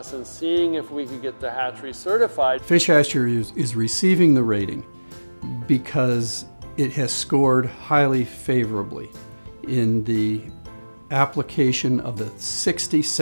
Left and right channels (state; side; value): inverted; both; correlation -1.00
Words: and seeing if we could get the hatchery certified. Fish Hatchery is receiving the rating because it has scored highly favorably in the application of the 60